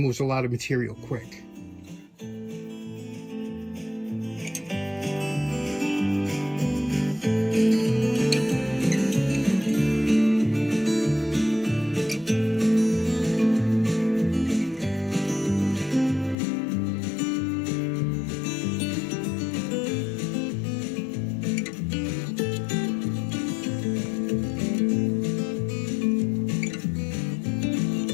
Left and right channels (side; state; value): right; drops out; at 16.4 s